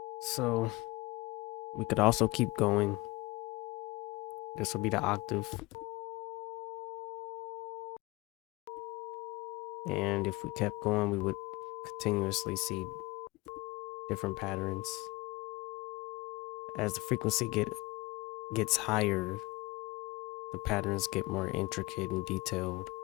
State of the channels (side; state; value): right; quieter; 22.6 dB